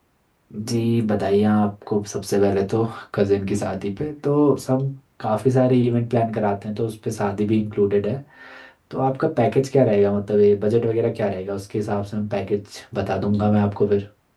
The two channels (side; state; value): both; identical; correlation 1.00